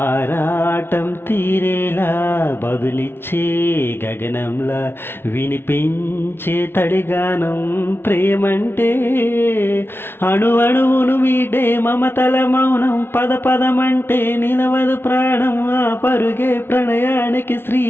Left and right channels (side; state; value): right; late; 0.11 ms